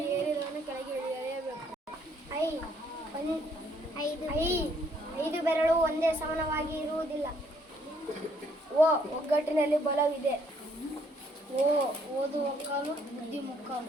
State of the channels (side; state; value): both; normal; correlation 0.67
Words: ಏರಿದವನು ಕೆಳಗೆ ಇಳಿಯಲೇಬೇಕು. ಐದು ಬೆರಳು ಒಂದೇ ಸಮಾನವಾಗಿ ಇರುವುದಿಲ್ಲ. ಒಗ್ಗಟ್ಟಿನಲ್ಲಿ ಬಲವಿದೆ. ಓದು ಒಕ್ಕಾಲು, ಬುದ್ಧಿ ಮುಕ್ಕಾಲು.